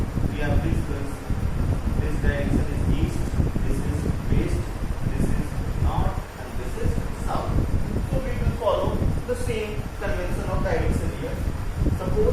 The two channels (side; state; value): both; identical; correlation 1.00